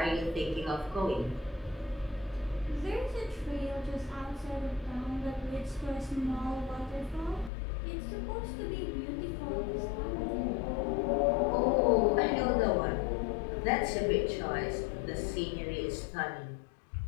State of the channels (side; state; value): right; drops out; at 7.5 s